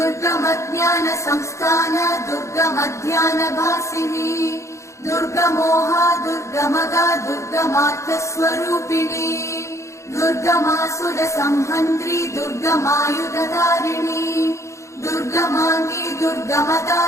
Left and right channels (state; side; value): late; right; 0.14 ms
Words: दुर्गमध्यानभासिनी दुर्गमोहा दुर्गमगा दुर्गमार्थस्वरूपिणी दुर्गमासुरसंहन्त्री दुर्गमायुधधारिणी दुर्गमाङ्गी दुर्गमदा